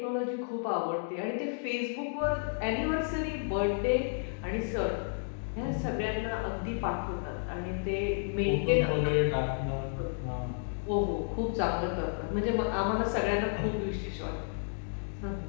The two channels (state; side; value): silent; right; digital silence